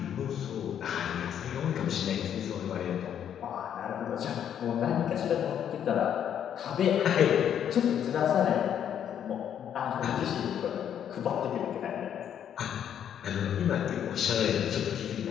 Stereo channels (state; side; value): quieter; right; 9.3 dB